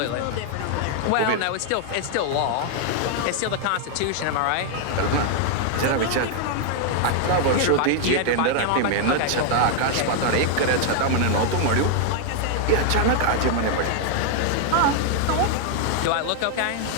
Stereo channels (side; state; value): both; different; correlation 0.00